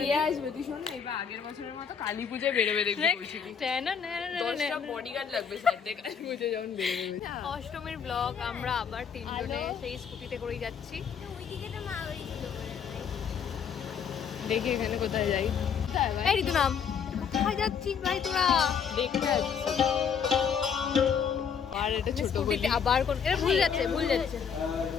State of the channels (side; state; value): right; quieter; 7.1 dB